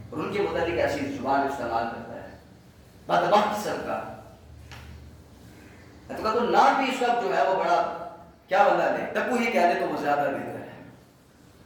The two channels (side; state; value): both; identical; correlation 1.00